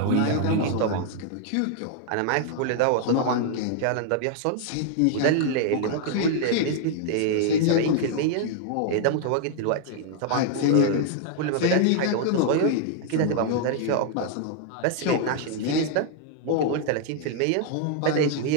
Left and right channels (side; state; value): both; different; correlation 0.00